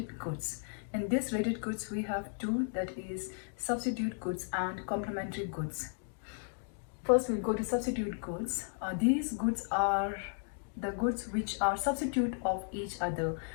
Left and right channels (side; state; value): right; silent; 55 dB below the other